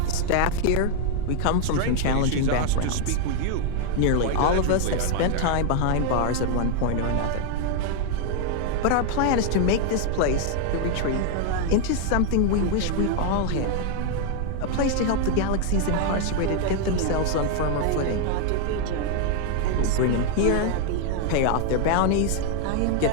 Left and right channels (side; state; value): both; different; correlation 0.00